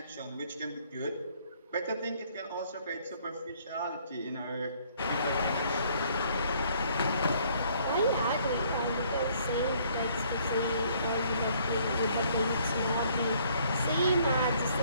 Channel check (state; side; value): inverted; both; correlation -0.63